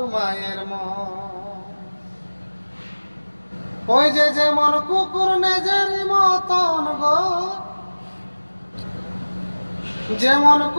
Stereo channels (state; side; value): inverted; both; correlation -1.00